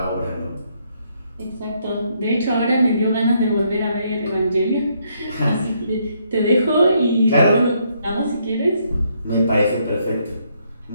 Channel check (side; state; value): both; inverted; correlation -0.73